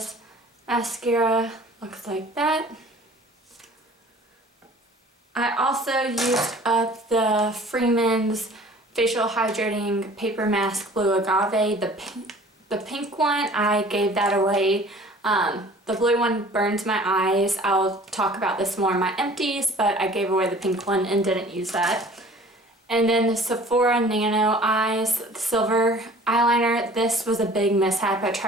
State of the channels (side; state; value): both; normal; correlation 0.48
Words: mascara. Looks like that. I also used up the Freeman's Facial Hydrating Paper Mask Blue Agave. The pink one, I gave that away. The blue one burns my eyes. I'll talk about this more in my empties, but I gave away the pink one and didn't use that. And then the Sephora Nano Eyes Silver Eyeliner. This was a big mishap. I